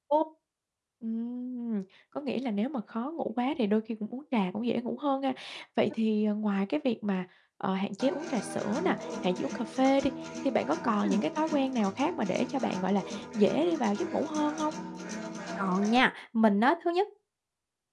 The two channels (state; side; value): identical; both; correlation 1.00